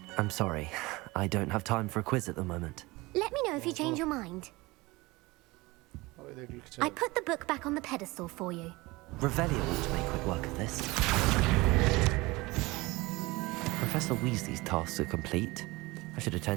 I'm sorry. I don't have time for a quiz at the moment. Let me know if you change your mind. I put the book back on the pedestal for you. Revelio ought to make quick work of this. Professor Weasley's tasks are complete. I should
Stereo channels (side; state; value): left; quieter; 22.2 dB